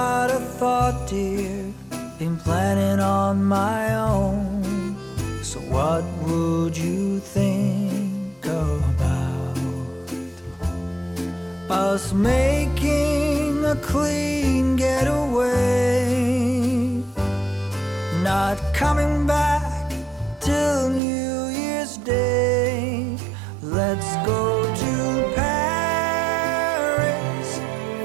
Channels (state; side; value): drops out; left; at 21.0 s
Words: a thought, dear, been planning on my own. So what would you think about us making a clean getaway, not coming back till New Year's Day? Let's go to Paris